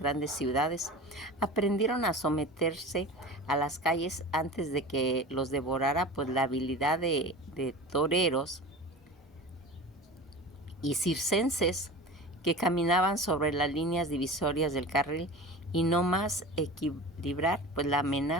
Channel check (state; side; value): normal; both; correlation 0.34